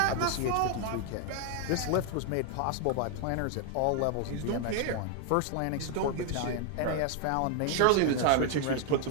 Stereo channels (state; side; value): different; both; correlation 0.00